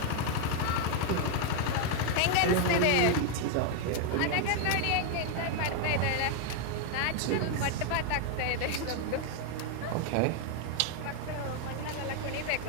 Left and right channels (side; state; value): both; different; correlation 0.01